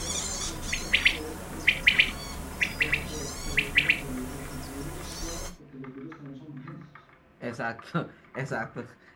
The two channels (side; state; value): both; identical; correlation 1.00